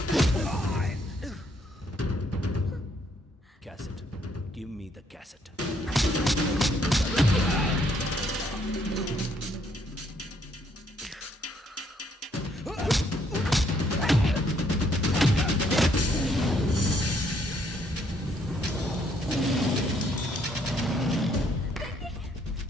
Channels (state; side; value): normal; both; correlation 0.69